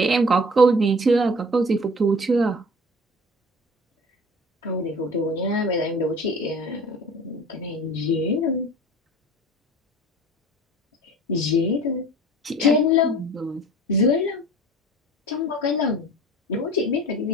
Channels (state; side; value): normal; both; correlation 0.43